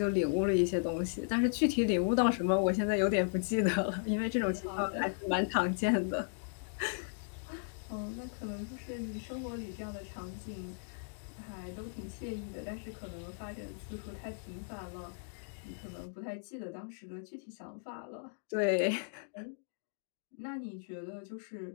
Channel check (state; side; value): silent; right; digital silence